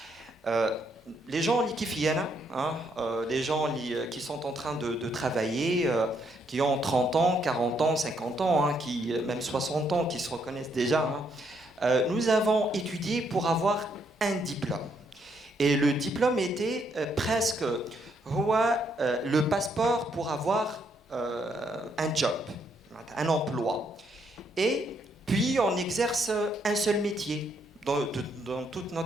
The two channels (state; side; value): normal; both; correlation 0.73